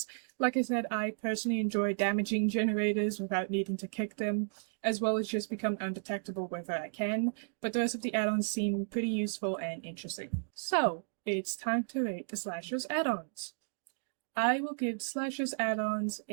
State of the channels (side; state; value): left; silent; digital silence